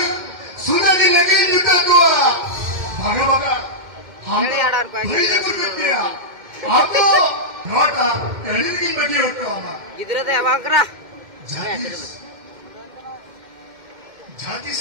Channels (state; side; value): late; left; 2.1 ms